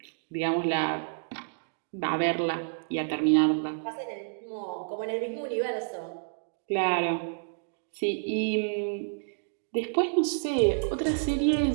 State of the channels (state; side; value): silent; left; digital silence